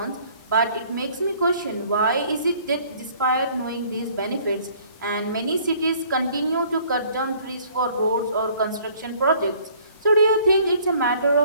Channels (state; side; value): inverted; both; correlation -0.57